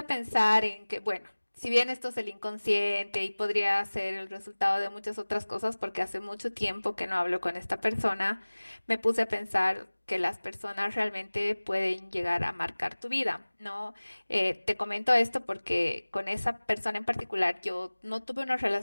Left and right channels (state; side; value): inverted; both; correlation -1.00